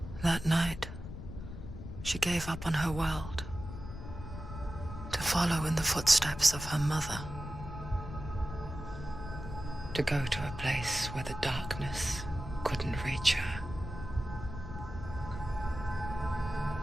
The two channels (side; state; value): left; noise; rumble, 9 dB below the sound